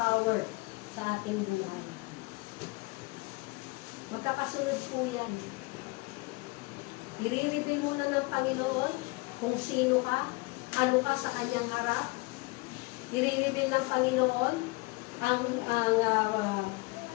sa ating buhay. Magkakasunod po yan. I-reveal mo na ng Panginoon kung sino ka, ano ka sa kanyang harap. I-reveal ng Panginoon ang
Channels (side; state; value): right; quieter; 25.4 dB